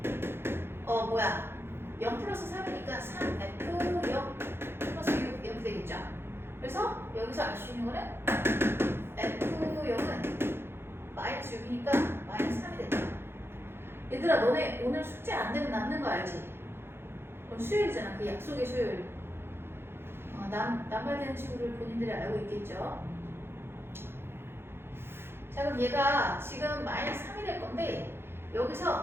0 플러스 3이니까 3F0 플러스 6 이렇게 되겠죠. 그래서 여기서 알 수 있는 거는 F0은 마이너스 6이니까 마이너스 3이 된다. 얘들아 너네 오늘 숙제 안 되면 남는 거 알지? 그럼 수요일이잖아. 그 약속의 수요일. 남발되는 친구들 본인들이 알고 있겠죠? 자 그럼 얘가 지금 마이너스 3이 될 건데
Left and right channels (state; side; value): late; left; 0.11 ms